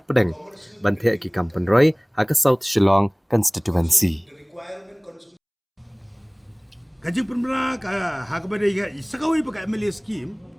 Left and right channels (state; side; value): identical; both; correlation 1.00